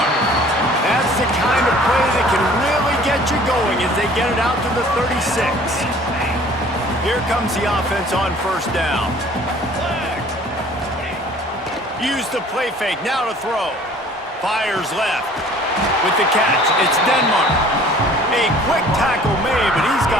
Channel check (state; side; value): normal; both; correlation 0.51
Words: That's the kind of play that can really get you going as they get it out to the 36. Here comes the offense on first down. Use the play fake, now to throw. Fires left. With the catch, it's Denmark. A quick tackle made, but he's